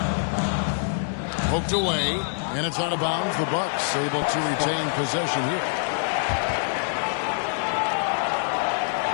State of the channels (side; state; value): right; silent; digital silence